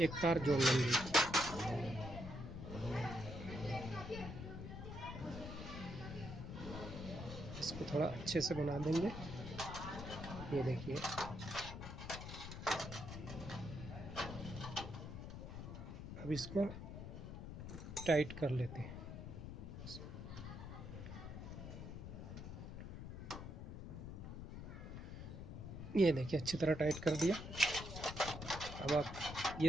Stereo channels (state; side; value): noise; left; rumble, 8 dB below the sound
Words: तार जोड़ लेंगे। इसको थोड़ा अच्छे से बना देंगे। ये देखिए, अब इसको टाइट कर लेते हैं। ये देखिए, अच्छी तरह टाइट कर दिया। अब आप